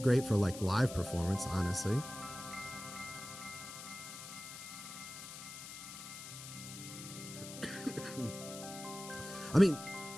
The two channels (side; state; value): left; noise; hiss, 11 dB below the sound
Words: great for like live performance, honestly. I mean,